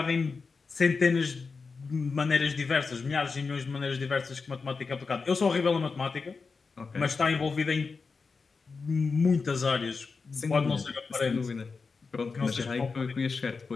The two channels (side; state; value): right; quieter; 4.6 dB